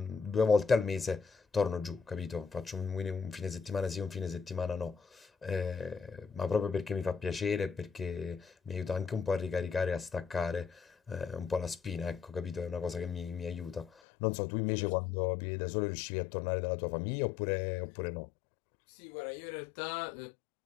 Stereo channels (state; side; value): drops out; right; at 13.9 s